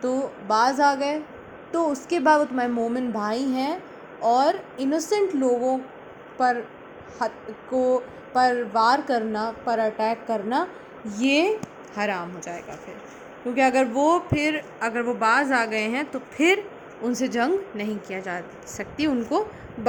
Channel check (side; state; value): both; identical; correlation 1.00